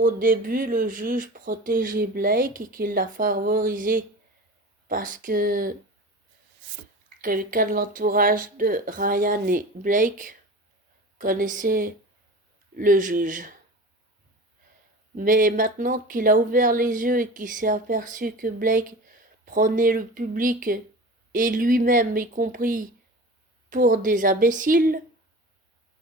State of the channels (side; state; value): both; normal; correlation 0.34